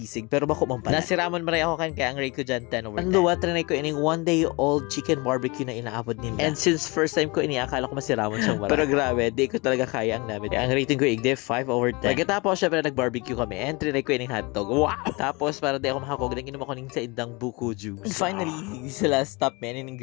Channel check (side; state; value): right; quieter; 26.9 dB